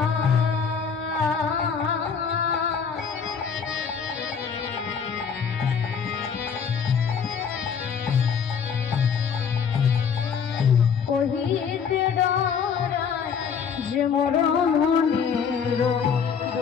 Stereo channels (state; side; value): quieter; right; 6.7 dB